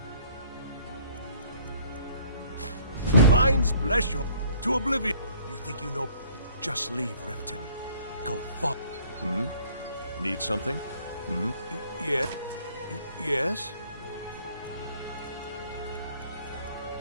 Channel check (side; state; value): both; inverted; correlation -0.57